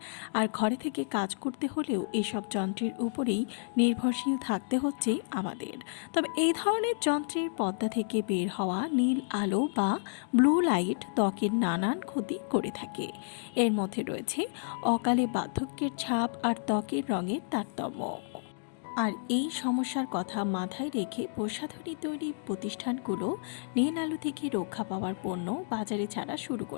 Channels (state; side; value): silent; right; digital silence